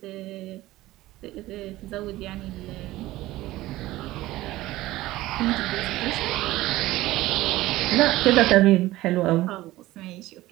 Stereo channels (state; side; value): quieter; left; 17.1 dB